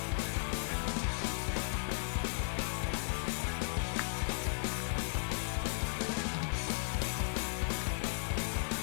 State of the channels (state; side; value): silent; right; digital silence